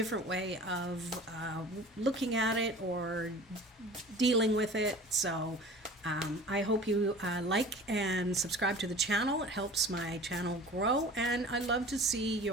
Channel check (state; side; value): normal; both; correlation 0.41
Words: way of looking at it or dealing with it. So I hope you like and subscribe to the channel. It helps my channel grow, and I love to see